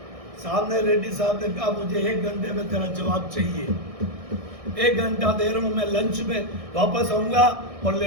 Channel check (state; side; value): late; left; 1.6 ms